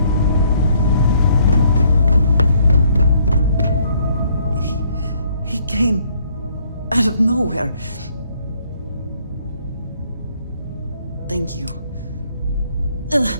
He came out of nowhere. Thank you.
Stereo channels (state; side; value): inverted; both; correlation -0.66